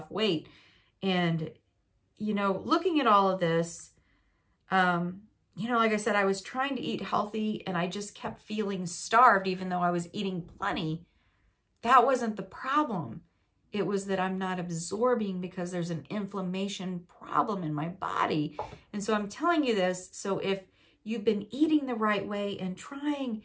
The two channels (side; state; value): both; identical; correlation 1.00